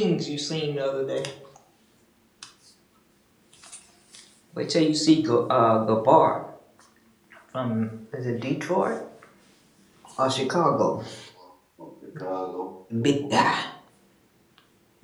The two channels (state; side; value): identical; both; correlation 1.00